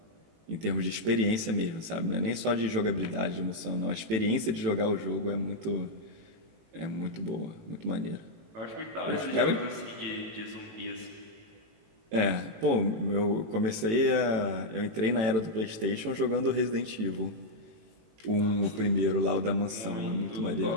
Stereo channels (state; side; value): late; left; 18 ms